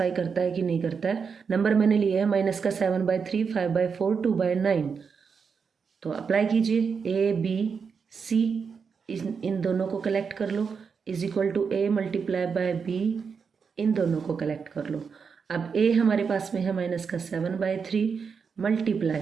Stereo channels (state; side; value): quieter; left; 5.9 dB